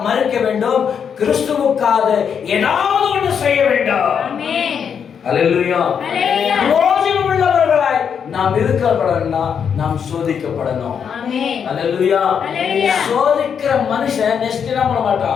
மரிக்க வேண்டும், கிறிஸ்துவுக்காக ஏதாவது ஒன்று செய்ய வேண்டும். அல்லேலூயா. பிரயோஜனம் உள்ளவர்களாய் நாம் இருக்கப்படணும்னா நாம் சோதிக்கப்படணும். அல்லேலூயா. சோதிக்கிற மனுஷன் நெக்ஸ்ட் என்ன பண்ண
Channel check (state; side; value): quieter; right; 7.3 dB